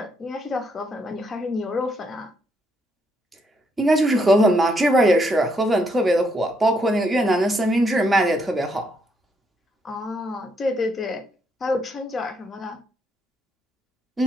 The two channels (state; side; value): normal; both; correlation 0.75